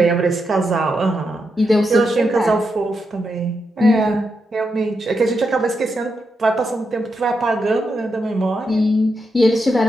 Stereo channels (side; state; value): both; normal; correlation 0.84